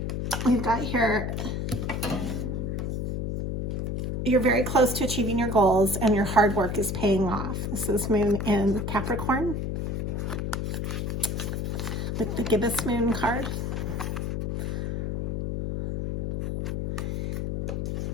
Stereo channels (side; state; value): left; noise; hum, 1 dB below the sound